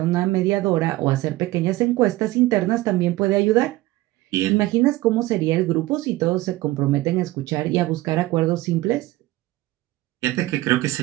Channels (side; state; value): left; quieter; 18.0 dB